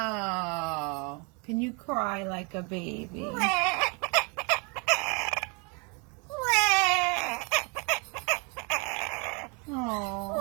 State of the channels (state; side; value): quieter; left; 33.0 dB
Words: Can you cry like a baby? Oh.